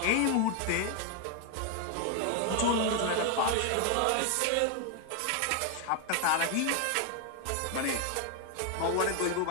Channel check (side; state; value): both; different; correlation 0.01